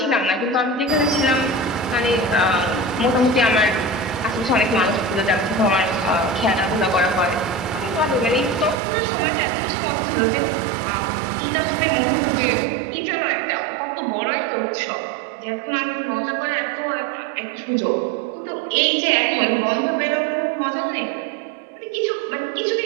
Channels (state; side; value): drops out; left; at 8.8 s